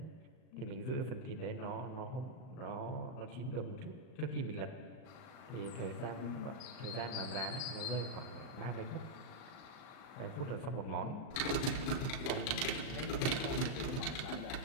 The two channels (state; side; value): late; right; 38 ms